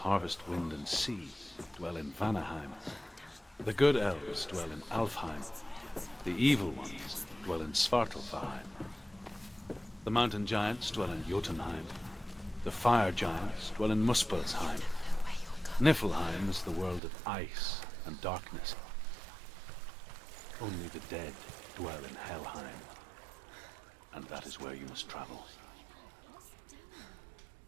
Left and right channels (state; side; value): drops out; left; at 17.0 s